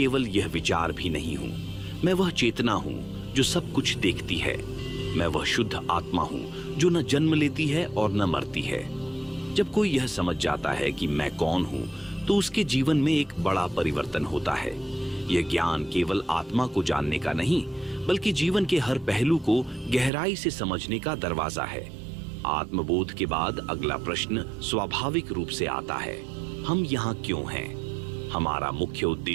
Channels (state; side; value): drops out; left; at 20.1 s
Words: यह विचार भी नहीं हूं, मैं वह चेतना हूं जो सब कुछ देखती है। मैं वह शुद्ध आत्मा हूं जो न जन्म लेती है और न मरती है। जब कोई यह समझ जाता है कि मैं कौन हूं, तो उसके जीवन में एक बड़ा परिवर्तन होता है। यह ज्ञान केवल आत्मा को जानने का नहीं, बल्कि जीवन के हर पहलू को गहराई से समझने का दरवाजा है। आत्मबोध के बाद अगला प्रश्न स्वाभाविक रूप से आता है, हम यहाँ क्यों हैं? हमारा मुख्य